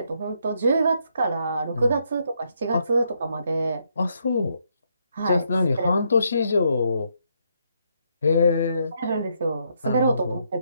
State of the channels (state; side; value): inverted; both; correlation -0.75